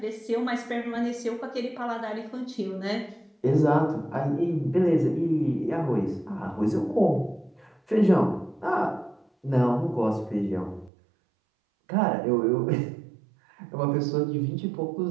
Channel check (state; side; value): drops out; left; at 10.9 s